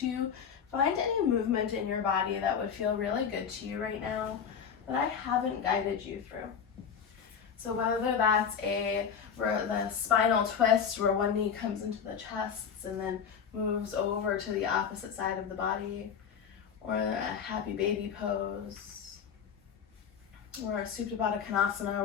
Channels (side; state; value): right; quieter; 7.2 dB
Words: find any movement in your body that would feel really good to you right now that I haven't guided you through. So whether that's the spinal twist where one knee comes into the chest and then moves over to the opposite side of the body, or a happy baby pose, or a Supta Baddha Konasana